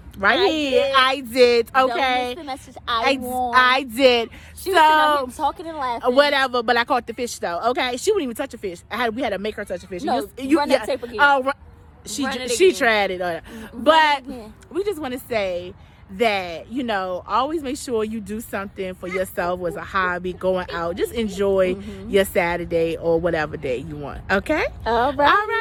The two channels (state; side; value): identical; both; correlation 1.00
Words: Right here. I did. Don't Okay. miss the message. I won. I did. She was sitting out here talking and laughing. Whatever, but I caught the fish though. Okay, she wouldn't even touch a fish. We had to make her touch a fish. No, run that tape again. She Run it she again. tried it. But we just want to say that, always make sure you do something for yourself as a hobby, going out. Just enjoy your Saturday or whatever day you want. Okay? All right. All